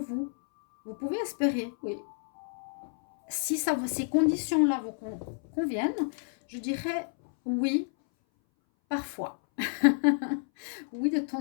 Vous pouvez espérer, oui. Si ces conditions-là vous conviennent, je dirais oui, parfois. Oui, de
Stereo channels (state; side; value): silent; right; 58 dB below the other